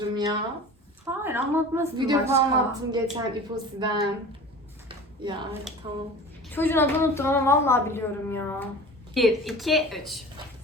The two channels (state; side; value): normal; both; correlation 0.38